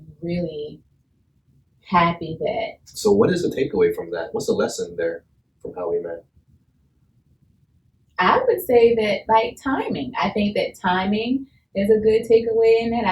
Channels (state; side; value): identical; both; correlation 1.00